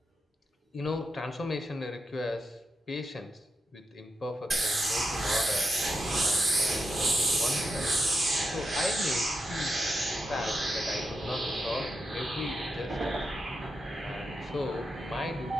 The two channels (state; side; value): normal; both; correlation 0.86